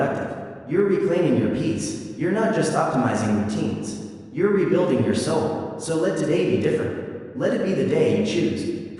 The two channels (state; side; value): identical; both; correlation 1.00